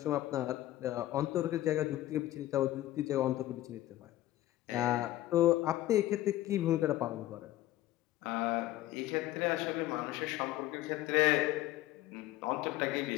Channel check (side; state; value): right; quieter; 15.1 dB